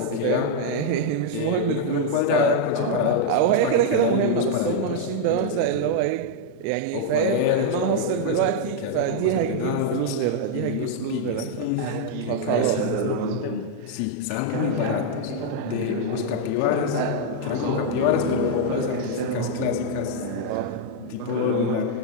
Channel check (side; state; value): both; different; correlation -0.01